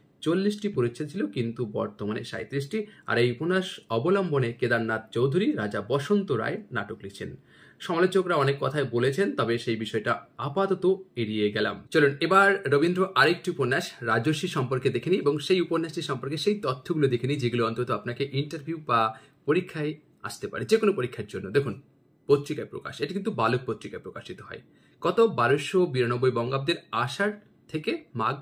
40টি পরিচ্ছেদ ছিল, কিন্তু বর্তমানে 37টি। আর এই উপন্যাস অবলম্বনে কেদারনাথ চৌধুরী রাজা বসন্ত রায় নাটক লিখছেন। সমালোচকরা অনেক কথাই বলেছেন, তবে সেই বিষয়টা আপাতত এড়িয়ে গেলাম। চলুন এবার রবীন্দ্র আরেকটি উপন্যাস রাজর্ষি সম্পর্কে দেখে নিই এবং সেই উপন্যাসটি সম্পর্কে সেই তথ্যগুলো দেখে নিই যেগুলো অন্তত আপনাকে ইন্টারভিউ বা পরীক্ষায় আসতে পারে, যে কোনো পরীক্ষার জন্য। দেখুন, পত্রিকায় প্রকাশ, এটি কিন্তু বালক পত্রিকায় প্রকাশিত হয়। কত 1292 বঙ্গাব্দের আষাঢ় থেকে মাঘ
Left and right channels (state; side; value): identical; both; correlation 1.00